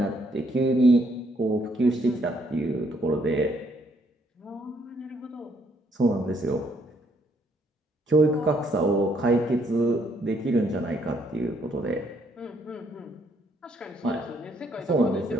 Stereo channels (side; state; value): both; normal; correlation 0.70